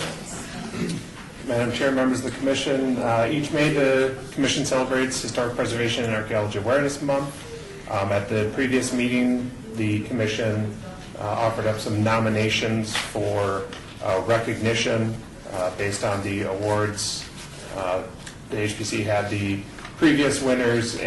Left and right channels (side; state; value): both; identical; correlation 1.00